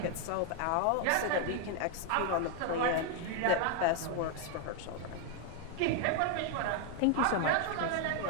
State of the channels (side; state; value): both; different; correlation 0.01